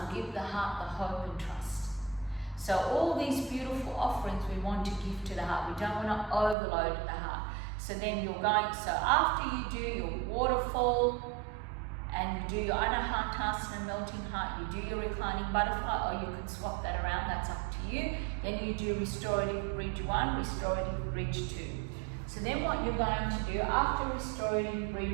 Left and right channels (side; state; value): left; drops out; at 6.6 s